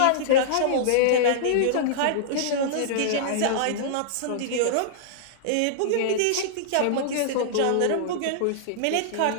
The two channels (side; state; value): both; different; correlation -0.02